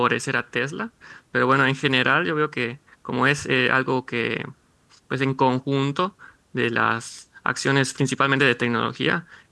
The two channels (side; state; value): both; identical; correlation 1.00